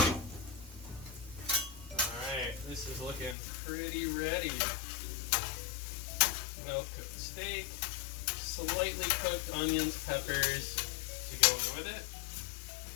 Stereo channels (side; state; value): right; drops out; at 3.4 s